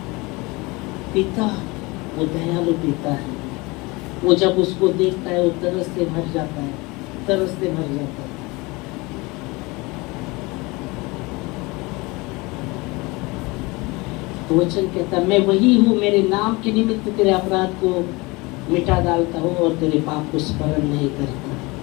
पिता वो दयालु पिता है। वो जब उसको देखता है वो तरस से भर जाता है, तरस से भर जाता है। तो वचन कहता है, मैं वही हूँ, मेरे नाम के निमित्त तेरे अपराध को मिटा डालता हूँ और तेरे पाप को स्मरण नहीं करता।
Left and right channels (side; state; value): right; quieter; 24.3 dB